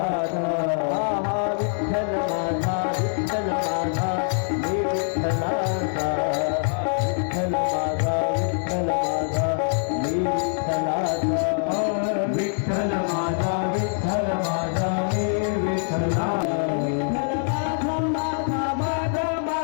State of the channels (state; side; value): silent; right; digital silence